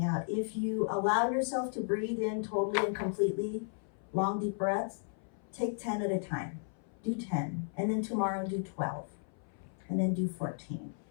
out. If you allow yourself to breathe in totally and completely, long, deep breaths, take 10 at a time. Do 10, and then tomorrow do 12, and then do 14.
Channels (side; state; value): right; silent; 55 dB below the other